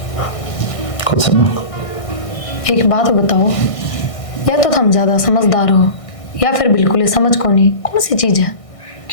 कुछ सुनो। एक बात बताओ, या तो तुम ज्यादा समझदार हो या फिर बिल्कुल ही समझ को नहीं। कौन सी चीज है?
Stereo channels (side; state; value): right; late; 1.6 ms